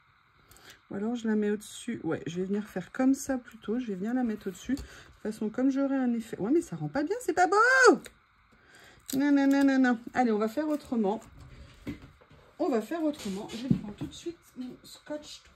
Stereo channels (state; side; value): identical; both; correlation 1.00